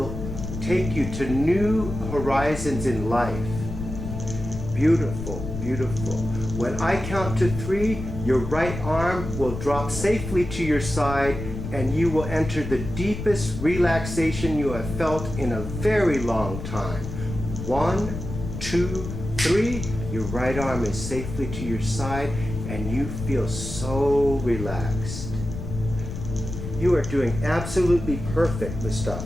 take you to new horizons in life. Beautiful, beautiful. When I count to 3, your right arm will drop safely to your side and you will enter the deepest relaxation you have felt in a very long time. 1, 2, 3. Your right arm is safely to your side and you feel so relaxed. You are doing absolutely perfect,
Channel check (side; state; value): left; noise; rumble, 7 dB below the sound